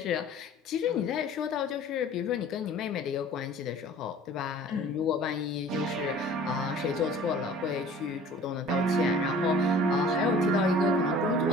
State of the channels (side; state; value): both; normal; correlation 0.47